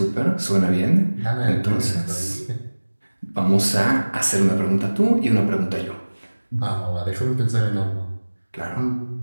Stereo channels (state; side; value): inverted; both; correlation -1.00